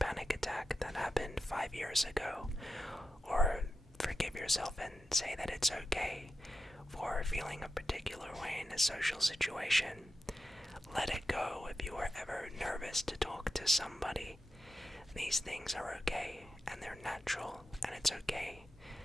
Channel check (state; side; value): normal; both; correlation 0.89